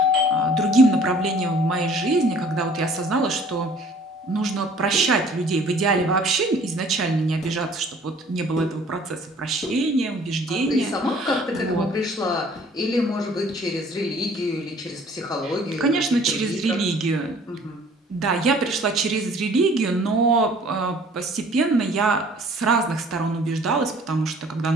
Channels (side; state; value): both; normal; correlation 0.54